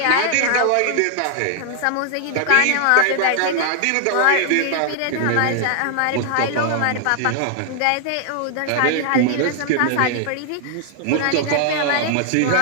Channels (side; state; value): both; different; correlation 0.00